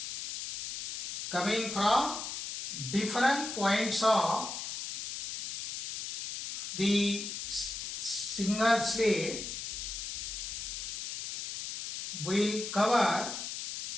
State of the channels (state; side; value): noise; left; hiss, 6 dB below the sound